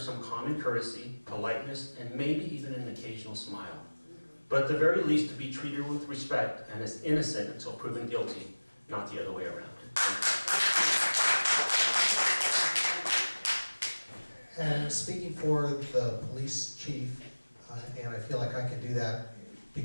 common courtesy, politeness, and maybe even an occasional smile. But at the very least, to be treated with respect and as innocent until proven guilty, not the other way around. And speaking for the police chief, and I feel like I can do that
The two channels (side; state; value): both; inverted; correlation -1.00